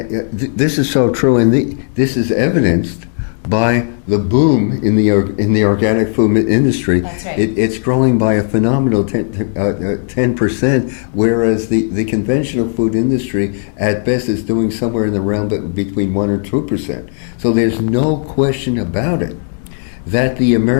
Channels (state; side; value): silent; right; 66 dB below the other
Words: is so true, and this is evidenced by the boom in the organic food industry. That's right. It's growing by a phenomenal 10%, whereas the conventional food industry at best is doing somewhere in the realm between 1 or 2%. So there's no question about it that the